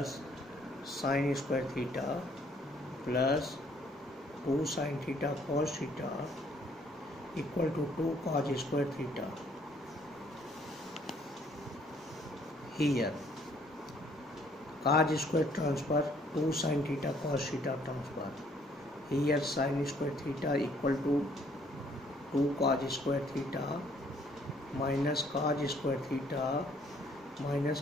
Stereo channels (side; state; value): both; normal; correlation 0.64